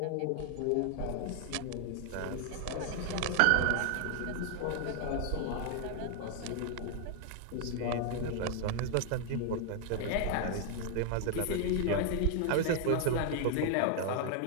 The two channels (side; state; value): both; different; correlation 0.00